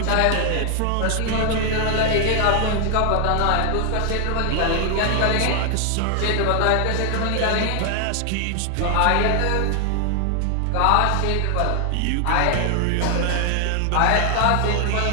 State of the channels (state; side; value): different; both; correlation 0.00